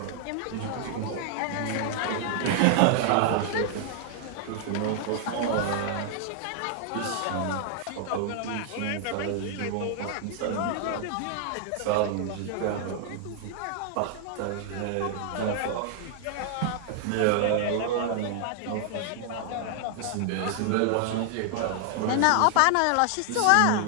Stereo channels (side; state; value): both; different; correlation 0.00